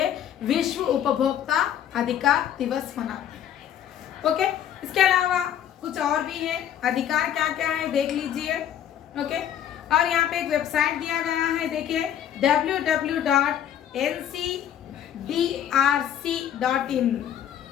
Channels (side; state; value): right; quieter; 10.1 dB